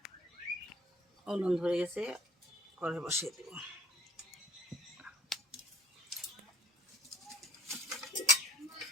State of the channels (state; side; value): normal; both; correlation 0.54